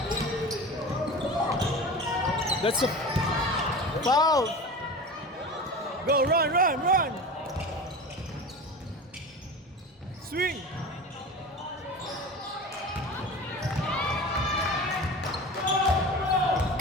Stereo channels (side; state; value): both; normal; correlation 0.32